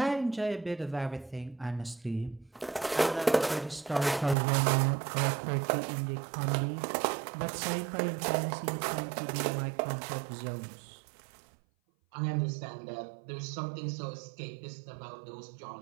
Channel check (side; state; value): left; drops out; at 4.4 s